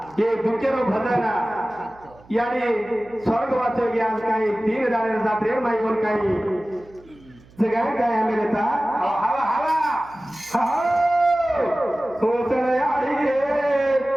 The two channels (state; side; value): noise; right; hum, 26 dB below the sound